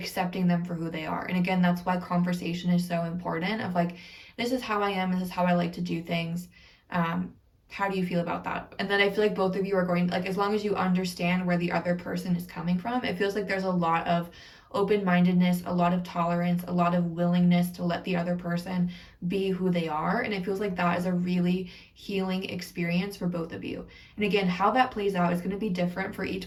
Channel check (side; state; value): both; identical; correlation 1.00